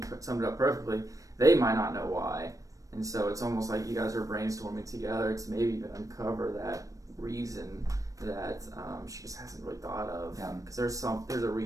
you summed it up perfectly. They might not know why. And so it's almost like you guys are brainstorming together to maybe even uncover that reason that she just hasn't really thought of. Because there's a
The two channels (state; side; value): late; left; 0.16 ms